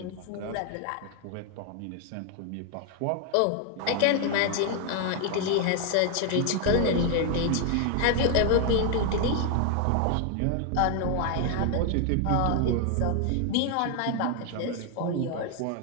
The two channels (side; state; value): both; different; correlation 0.00